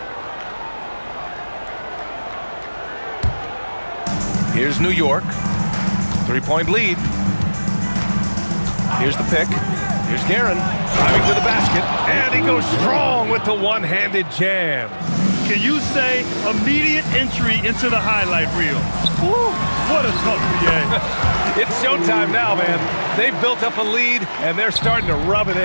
Here's New York. 3-point lead. Here's the pick. Here's Guerin driving to the basket, and he goes strong with the one-handed jam. Can you say immediate entry into the highlight reel? Woo, what a tough PA. It's showtime now, man. They've built up a lead, and they're starting to rub it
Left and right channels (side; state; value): both; inverted; correlation -1.00